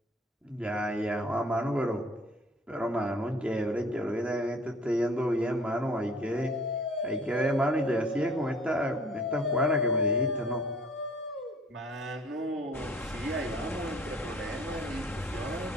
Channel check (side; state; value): both; normal; correlation 0.52